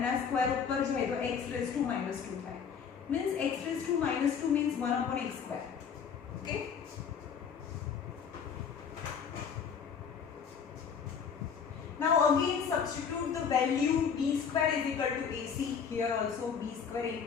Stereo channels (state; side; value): quieter; right; 6.9 dB